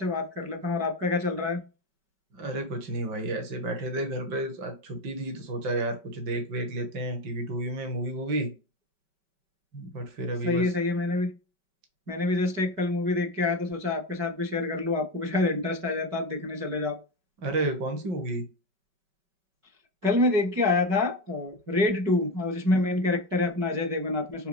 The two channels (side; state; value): left; late; 5.2 ms